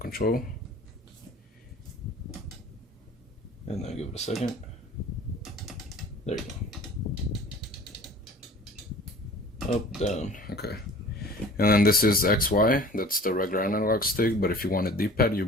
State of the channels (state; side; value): normal; both; correlation 0.45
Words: and then give it a second. There you go. Up, down, okay. And then this is XY, that's the regular analog stick, but if you want a D-pad, you